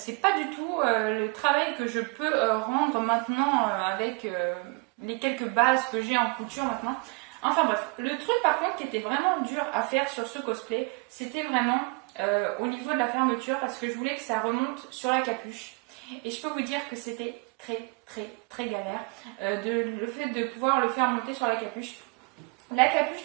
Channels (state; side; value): quieter; left; 31.6 dB